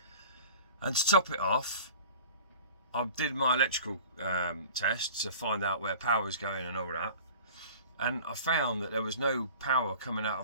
And to top it off, I did my electrical test to find out where power was going and all that. And I found that there was no power coming out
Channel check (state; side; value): inverted; both; correlation -0.42